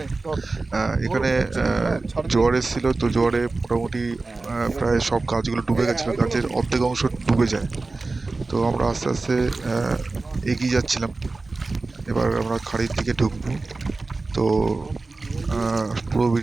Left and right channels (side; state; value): left; quieter; 3.5 dB